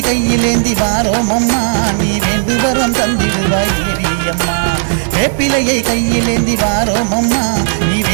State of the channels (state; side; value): silent; left; digital silence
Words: கையில் ஏந்தி வாரோமம்மா. நீ வேண்டு வரம் தந்திடுவாய் தேவியம்மா. வேப்பிலையை கையில் ஏந்தி வாரோமம்மா, நீ